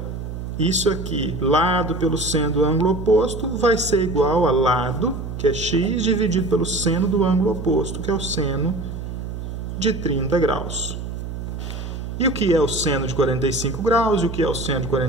isso aqui, lado pelo seno do ângulo oposto, vai ser igual a lado, que é x, dividido pelo seno do ângulo oposto, que é o seno de 30 graus. E o que é o seno de 45 graus e o que é o seno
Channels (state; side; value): noise; right; hum, 7 dB below the sound